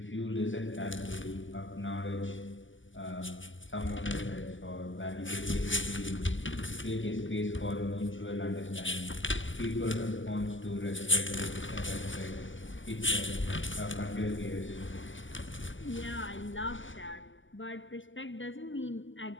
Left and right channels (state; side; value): late; right; 0.56 ms